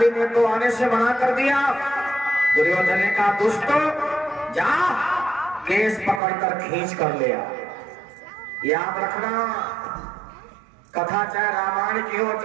ने तो आने से मना कर दिया। दुर्योधन ने कहा, दुष्टो जा केस पकड़कर खींच कर ले आ। याद रखना, कथा चाहे रामायण की हो,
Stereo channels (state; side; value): drops out; left; at 6.2 s